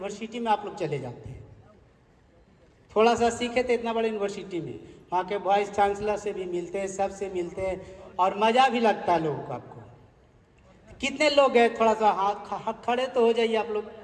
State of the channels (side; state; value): both; identical; correlation 1.00